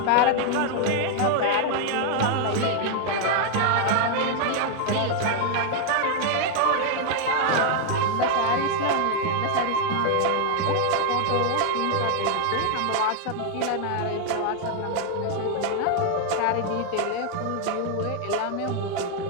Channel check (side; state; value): both; different; correlation 0.00